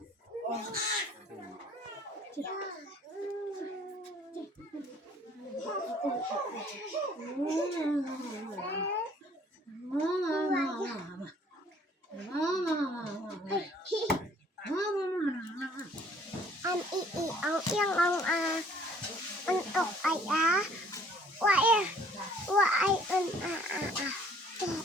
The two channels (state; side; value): normal; both; correlation 0.57